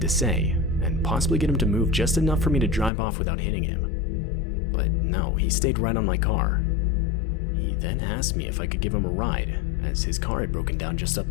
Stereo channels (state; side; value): drops out; right; at 2.9 s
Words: say, and possibly get him to move just enough for me to drive off without hitting him. But no, he stayed right on my car. He then asked me if I could give him a ride, as his car had broken down just up